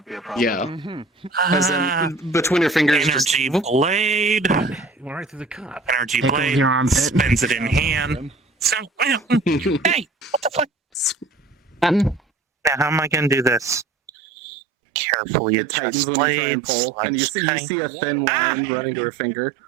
be a problem. Yeah. As in, between your fingers, Energy blade. Went right through the cup. Energy Tickles blade. your armpit. Spins it in hand. So, hey, what the fuck? Button. Now, how am I gonna do this? Carefully. It tightens when you try and pull, and you see a thin line running to her finger.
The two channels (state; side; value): drops out; left; at 14.1 s